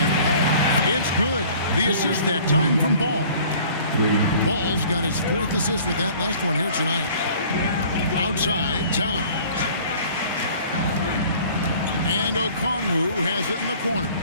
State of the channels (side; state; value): both; inverted; correlation -0.50